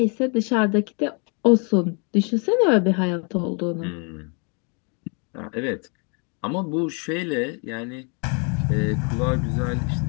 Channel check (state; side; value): quieter; right; 36.2 dB